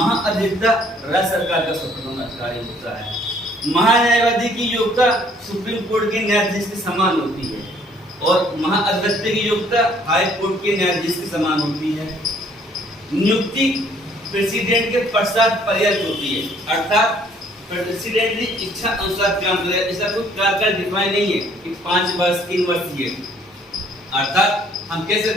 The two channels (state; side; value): normal; both; correlation 0.61